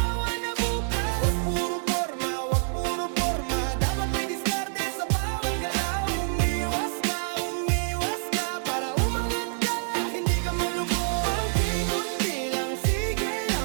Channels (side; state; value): left; silent; digital silence